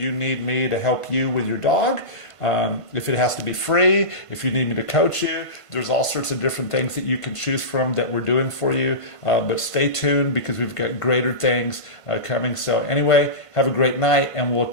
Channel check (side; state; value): right; late; 1.5 ms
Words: need me to help you with your dog, if it has to be free, if you need me to coach you, there's all sorts of different things that you can choose from that we're doing for you. But stay tuned, because we've got greater things coming. So anyway, have a great night, and we'll